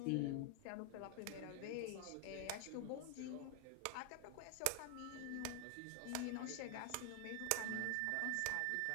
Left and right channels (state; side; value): different; both; correlation 0.00